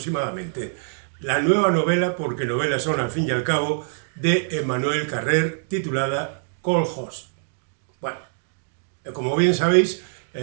La nueva novela, porque novelas son al fin y al cabo, de Emmanuel Carrère, titulada Cold Host. Bueno, como bien sabéis,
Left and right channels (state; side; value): silent; left; digital silence